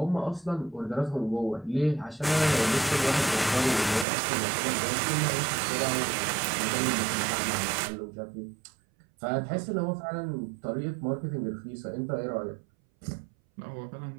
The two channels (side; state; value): left; drops out; at 4.0 s